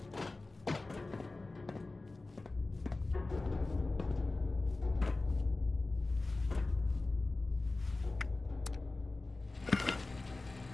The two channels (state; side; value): quieter; right; 3.3 dB